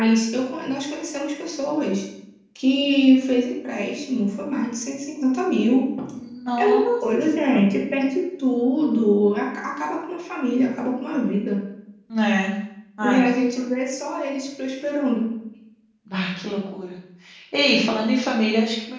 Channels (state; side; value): identical; both; correlation 1.00